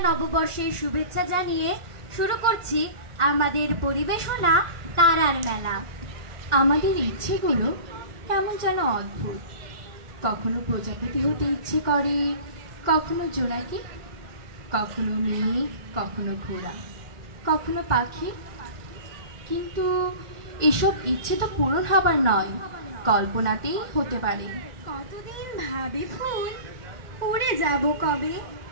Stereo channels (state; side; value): late; left; 2.1 ms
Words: নববর্ষের শুভেচ্ছা জানিয়ে শুরু করছি আমাদের পরিবেশনা তারার মেলা। আমাদের ইচ্ছেগুলো কেমন যেন অদ্ভুত। কখনো প্রজাপতি হতে ইচ্ছে করে, কখনো জোনাকি, কখনো মেঘ, কখনো ঘোড়া, কখনো পাখি। কিন্তু এসব ইচ্ছে তো পূরণ হবার নয়, কল্পনাতেই হতে পারে। কতদিন ভাবে ফুল, উড়ে যাব কবে,